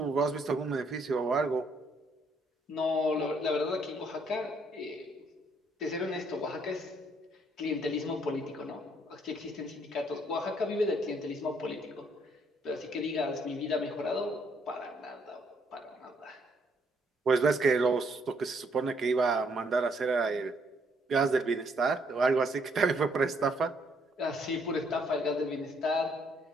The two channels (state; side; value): normal; both; correlation 0.69